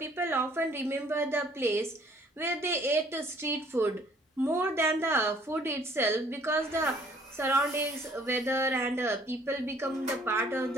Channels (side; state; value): both; normal; correlation 0.59